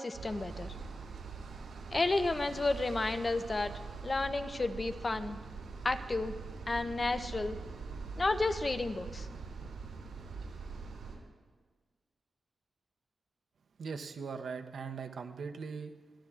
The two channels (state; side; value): normal; both; correlation 0.93